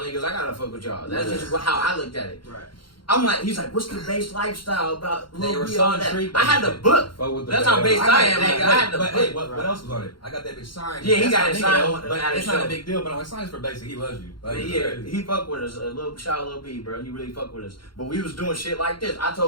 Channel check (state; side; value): late; right; 0.73 ms